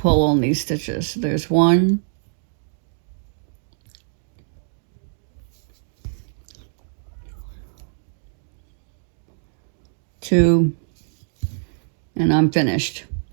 on these stitches. There's 1, 2, and I'm finished.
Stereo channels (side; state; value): left; silent; digital silence